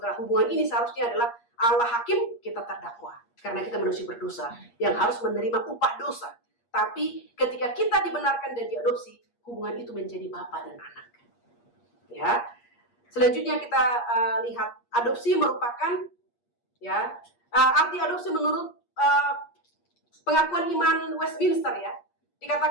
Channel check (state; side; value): late; right; 8.5 ms